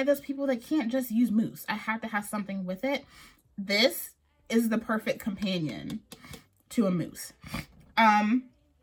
those people that can't just use mousse. I have to have something with it. This is the perfect companion to a mousse.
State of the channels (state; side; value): identical; both; correlation 1.00